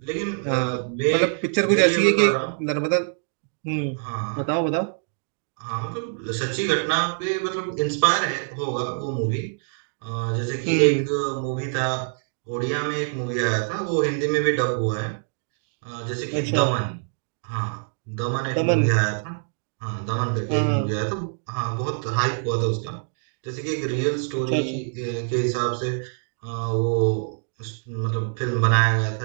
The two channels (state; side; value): silent; left; digital silence